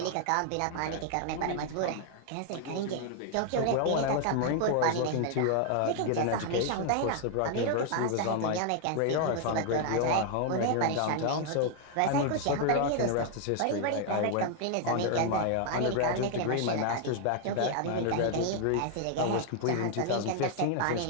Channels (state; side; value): different; both; correlation 0.00